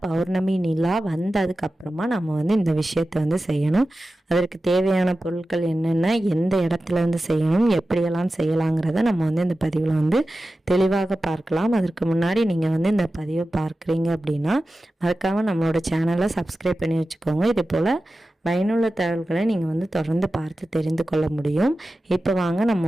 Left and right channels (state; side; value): normal; both; correlation 0.94